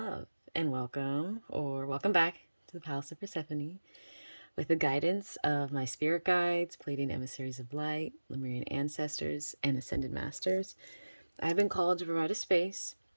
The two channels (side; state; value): both; inverted; correlation -1.00